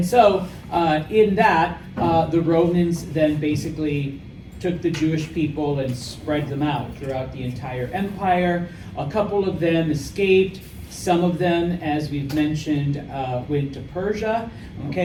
so, in that, the Romans then basically took the Jewish people and spread them out throughout the entire empire. A couple of them escaped. Some of them, as we've mentioned, went to Persia.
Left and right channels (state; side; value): identical; both; correlation 1.00